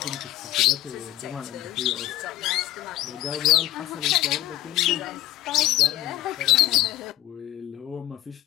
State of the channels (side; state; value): right; quieter; 14.5 dB